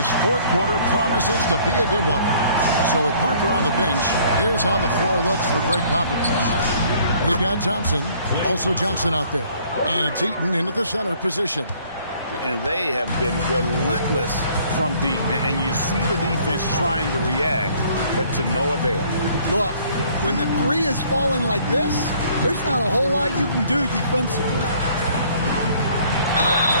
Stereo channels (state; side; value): inverted; both; correlation -0.58